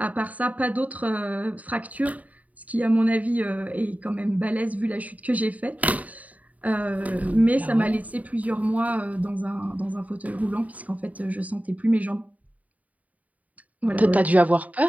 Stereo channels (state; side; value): late; left; 0.072 ms